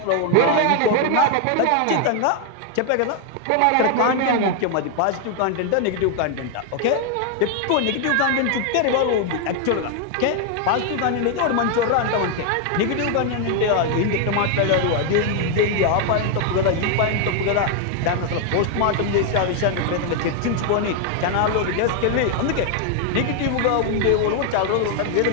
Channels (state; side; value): different; both; correlation 0.00